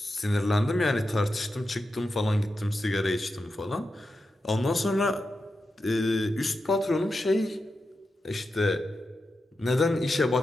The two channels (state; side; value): normal; both; correlation 0.89